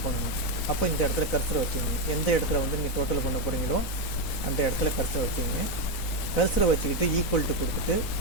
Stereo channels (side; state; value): right; late; 4.0 ms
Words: பண்ணணும். அப்போ இந்த இடத்துல கர்சரை வச்சுங்க. எந்த இடத்துல நீங்கள் டோட்டல் பண்ண போகிறீங்களோ அந்த இடத்துல கர்சரை வச்சுங்க. கர்சரை வச்சுக்கிட்டு ஈக்குவல் டு கொடுத்துட்டு